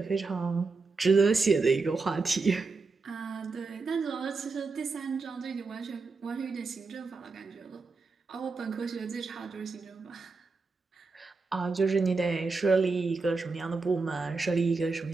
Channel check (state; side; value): quieter; left; 4.1 dB